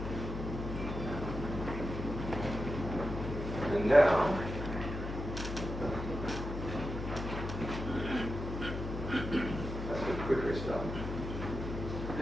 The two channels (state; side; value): noise; left; hum, 5 dB below the sound